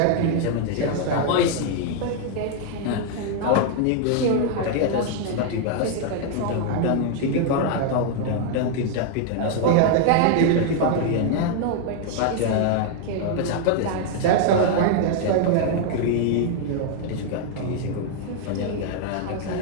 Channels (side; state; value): both; different; correlation 0.00